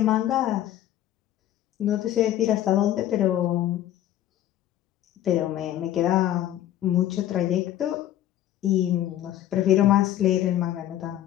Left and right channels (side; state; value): right; quieter; 12.5 dB